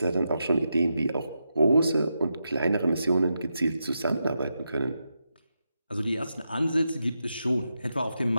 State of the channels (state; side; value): inverted; both; correlation -0.87